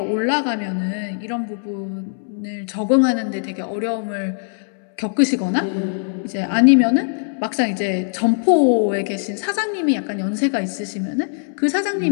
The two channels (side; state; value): right; silent; 65 dB below the other